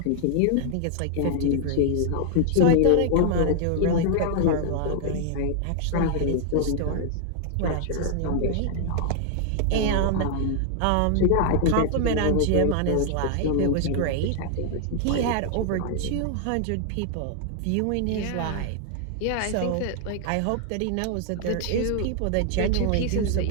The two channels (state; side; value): different; both; correlation 0.00